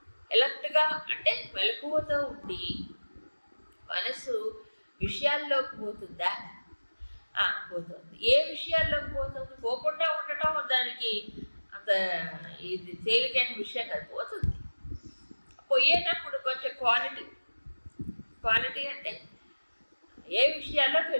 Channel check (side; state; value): both; inverted; correlation -1.00